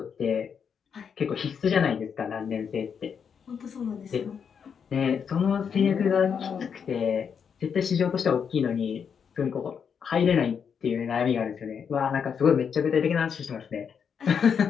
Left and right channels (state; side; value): quieter; right; 7.0 dB